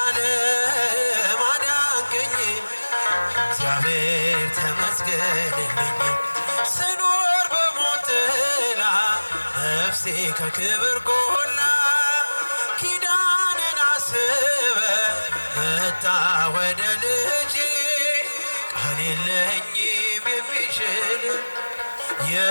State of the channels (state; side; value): inverted; both; correlation -1.00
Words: አዳንከኝ እግዚአብሔር ተመስገንልኝ። ስኖር በሞት ጥላ ነፍሴ ከክብር ጎላ ኪዳንን አስበ መጣ ወደ ልጅ ቃል የለኝም የሚችል